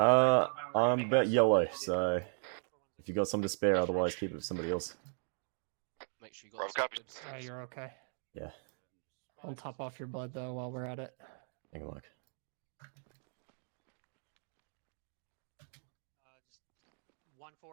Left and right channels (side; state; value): left; silent; 53 dB below the other